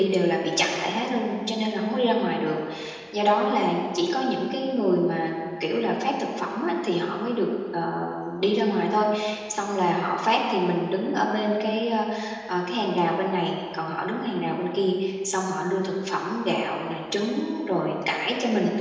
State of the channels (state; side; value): identical; both; correlation 1.00